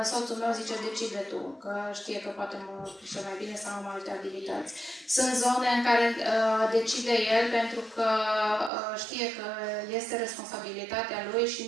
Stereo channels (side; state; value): left; drops out; at 8.7 s